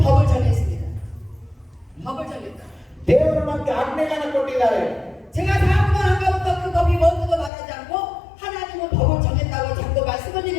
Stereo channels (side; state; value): right; drops out; at 7.5 s